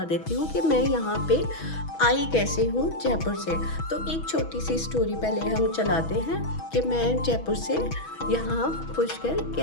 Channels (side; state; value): right; late; 6.2 ms